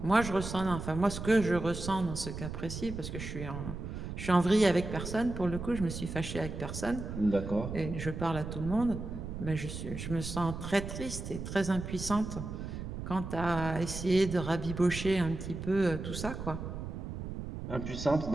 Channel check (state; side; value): noise; right; rumble, 7 dB below the sound